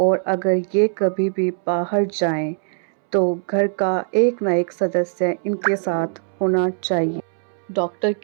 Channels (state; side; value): silent; left; 65 dB below the other